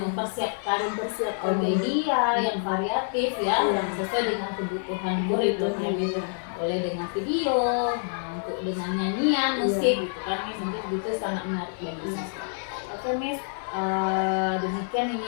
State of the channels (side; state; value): right; silent; 60 dB below the other